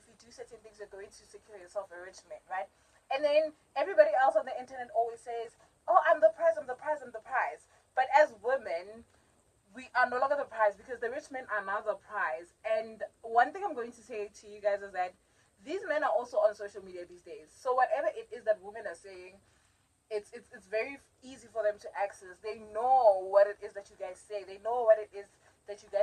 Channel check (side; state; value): both; identical; correlation 1.00